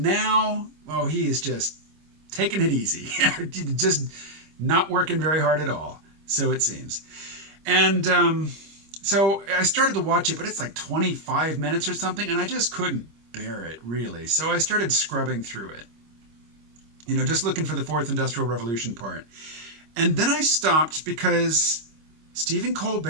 he is just taking it easy. Just not working very hard at all, so it seems. And so I started to watch it, but it's like 25 minutes or something, and I just couldn't bear it, really. So I started scrubbing through it, just looking for the Fourth Industrial Revolution part. And then I stopped because Stephen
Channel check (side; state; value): left; late; 25 ms